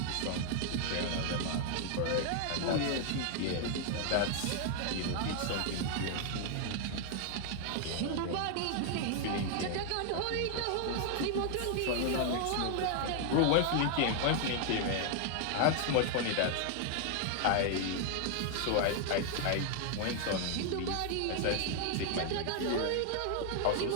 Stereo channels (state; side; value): different; both; correlation 0.00